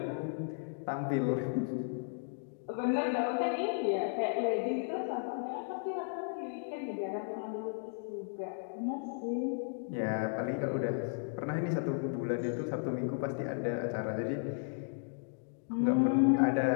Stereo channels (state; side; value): silent; right; digital silence